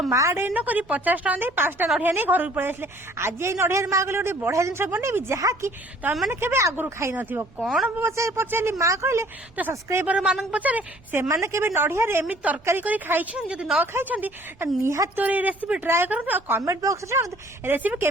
ମା ଡେରି ନ କରି 50 ଟଙ୍କା ଦେଇ 5ଟା ନଡ଼ିଆ ନେଇ ଘରକୁ ପଳେଇ ଆସିଲେ। ଆଜି ଏଇ ନଡ଼ିଆରେ ମା କହିଲେ ଗୋଟେ ବଢିଆ ଜିନିଷ ବନେଇବି ଯାହାକି ତମେ ମାନେ କେବେ ଆଗରୁ ଖାଇନଥିବ। କଣ ପଚାରିଲି ମା କହିଲେ ତ ସବସ୍କ୍ରାଇବର ମାନଙ୍କୁ ପଚାରେ ସେମାନେ କେବେ ନଡ଼ିଆରେ ଏମିତି ତରକାରୀ କରି ଖାଇଛନ୍ତି। ଯଦି ନ ଖାଇଛନ୍ତି ନିହାତି ଏ ରେସିପି ଟ୍ରାଏ କରନ୍ତୁ ଆଉ କମେଣ୍ଟ ବକ୍ସରେ ଜାଣନ୍ତୁ ରେସିପି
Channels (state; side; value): noise; right; rumble, 27 dB below the sound